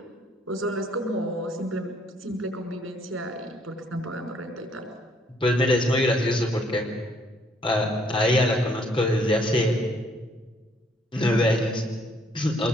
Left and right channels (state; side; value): normal; both; correlation 0.66